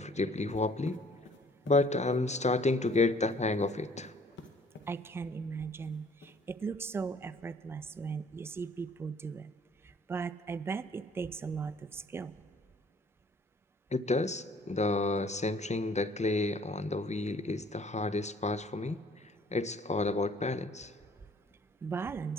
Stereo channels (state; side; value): normal; both; correlation 0.57